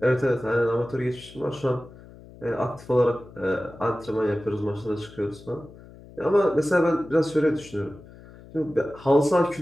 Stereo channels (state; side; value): noise; left; hum, 20 dB below the sound